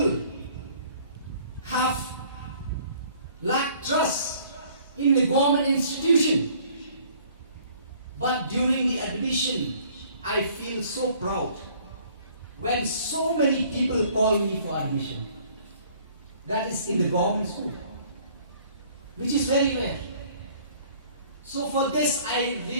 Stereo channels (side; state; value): both; inverted; correlation -0.56